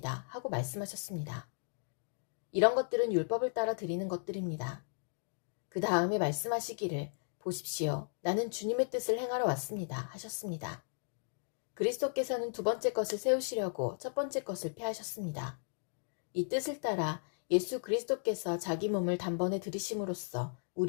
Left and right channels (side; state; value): right; silent; digital silence